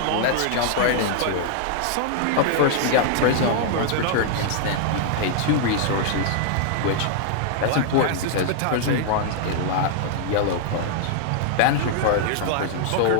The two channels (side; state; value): both; different; correlation -0.01